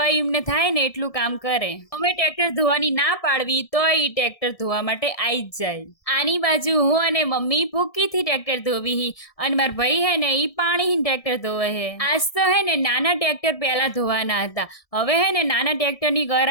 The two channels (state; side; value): late; right; 1.7 ms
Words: એમને થાય ને એટલું કામ કરે. અમે ટ્રેક્ટર ધોવાની ના પાડવી તો એ ટ્રેક્ટર ધોવા માટે આવી જ જાય. આની બાજુ હું અને મમ્મી ભૂકીથી ટ્રેક્ટર ધોવી અને મારા ભાઈ હે ને એ પાણી ટ્રેક્ટર ધોવે હે. આજ તો હે ને નાના ટ્રેક્ટર પહેલા ધોવાના હતા. હવે હે ને નાના ટ્રેક્ટરની